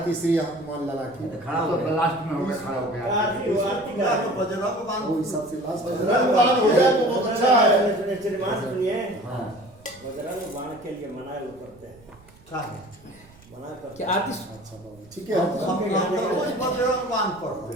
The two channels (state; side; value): noise; right; rumble, 26 dB below the sound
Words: श्री हनुमान लाला की। खड़ा हो गया, लास्ट में हो गया, खड़ा हो गया। तो बजरंग बाण वो हिसाब से लास्ट बजरंग बाण हो जाए तो बहुत अच्छा है। श्रीमान सुनिए, हाँ बजरंग बाण के लिए मना लोग करते हैं, का है? मना करते क्या आरती अच्छा बाबू ठीक है। हम रोज बजरंग बाण पढ़ते